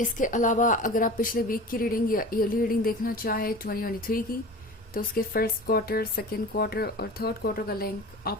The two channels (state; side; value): normal; both; correlation 0.36